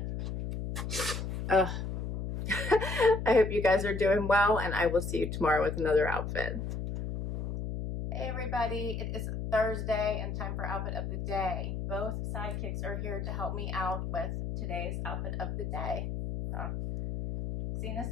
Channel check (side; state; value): left; noise; hum, 4 dB below the sound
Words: I hope you guys are doing well, and I will see you tomorrow with another outfit. Hey everybody, it is Thursday and time for outfit of the day. Both sidekicks are here to help me out with today's outfit of the day. Zena's